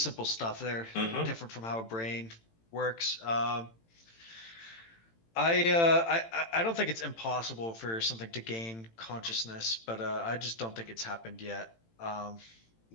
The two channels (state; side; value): late; right; 18 ms